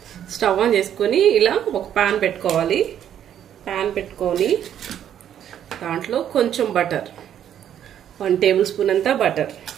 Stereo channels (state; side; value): quieter; left; 10.0 dB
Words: స్టవ్ ఆన్ చేసుకొని ఇలా ఒక పాన్ పెట్టుకోవాలి. పాన్ పెట్టుకొని దాంట్లో కొంచెం బటర్, 1 టేబుల్ స్పూన్ అంతా బటర్,